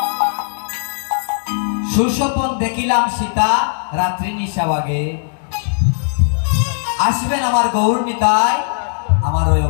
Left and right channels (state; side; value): silent; right; digital silence